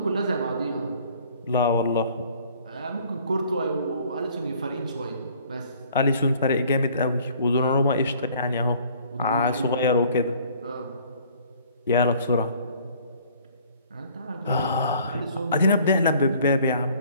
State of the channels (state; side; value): inverted; both; correlation -0.56